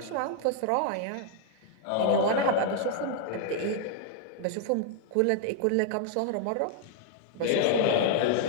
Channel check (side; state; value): both; different; correlation 0.00